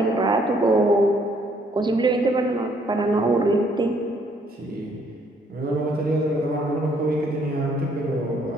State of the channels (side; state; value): both; normal; correlation 0.66